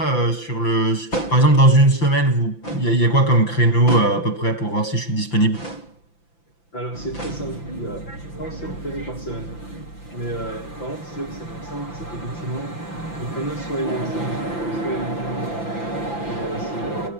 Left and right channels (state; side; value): late; right; 5.9 ms